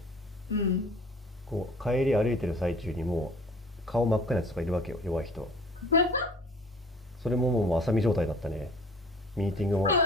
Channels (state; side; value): normal; both; correlation 0.49